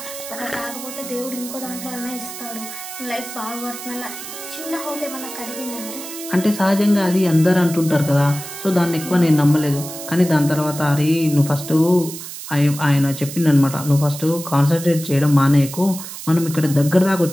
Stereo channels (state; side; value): noise; right; hiss, 11 dB below the sound